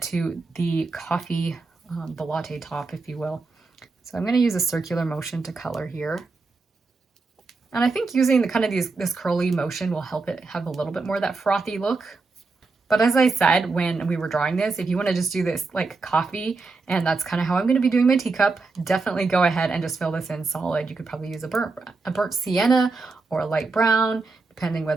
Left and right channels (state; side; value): quieter; left; 4.0 dB